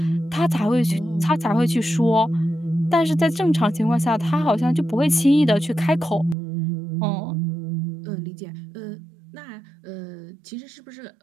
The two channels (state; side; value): drops out; left; at 6.4 s